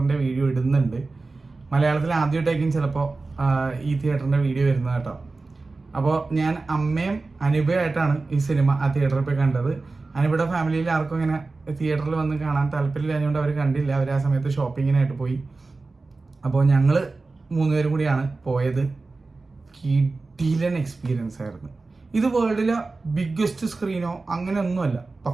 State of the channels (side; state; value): left; quieter; 3.6 dB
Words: വീഡിയോ ഇടുന്നുണ്ട്. മലയാളത്തിൽ ആദ്യമായിട്ടായിരിക്കും ചിലപ്പോൾ ഈ തിയേറ്ററിൻ്റെ വീഡിയോ വരുന്നത് കേട്ടോ. അപ്പോൾ ഞാൻ അമ്മയും അനുഭവമായിട്ടാണ് ഈ സിനിമ ആ തിയേറ്ററിൽ പോയി കണ്ടത്. അനുഭവയുടെ ഫാമിലിയിൽ ആർക്കും ഇങ്ങനെ തിയേറ്ററിൽ വന്ന് കാണാൻ താല്പര്യമില്ലാഞ്ഞുകൊണ്ട് അവർ കണ്ടില്ല. അവർ ആ സമയത്ത് ഷോപ്പിങ്ങിനായിട്ട് പോയി. അപ്പോൾ ഞങ്ങൾ 3 പേരും കൂടിയാണ് പോയത്. കിടിലൻ എക്സ്പീരിയൻസ് ആയിരുന്നു. ഇത് വേൾഡിലെ ബിഗ്ഗസ്റ്റ് സ്ക്രീനോ അങ്ങനെയൊന്നുമല്ല,